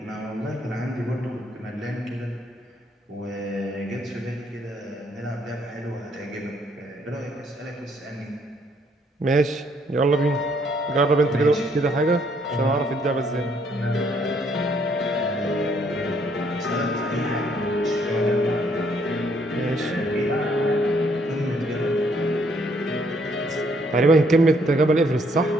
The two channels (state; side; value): normal; both; correlation 0.68